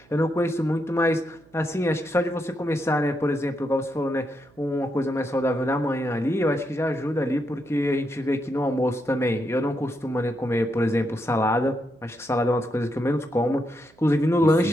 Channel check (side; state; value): right; noise; hum, 29 dB below the sound